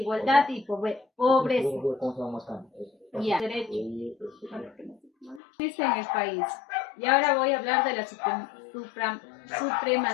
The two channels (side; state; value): right; drops out; at 5.4 s